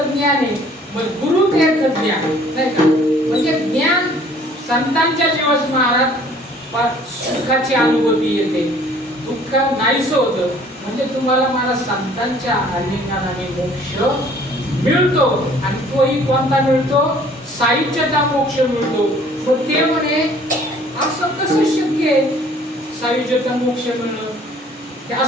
ज्ञान आहे. मग गुरु ते ज्ञान, नाही का? म्हणजे ज्ञान संतांच्या जीवास महाराज सुखाची अनुभूती येते, दुःख नाहीसं होतं. म्हणजे तुम्हाला मला संतांच्या आलिंगनाने मोक्ष मिळतो. आणि तोही कोणता मिळतो? सायुज्यता मोक्ष मिळतो. मग ते म्हणे असं कसं शक्य आहे सायुज्यता मोक्ष मिळणं? ते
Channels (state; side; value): normal; both; correlation 0.55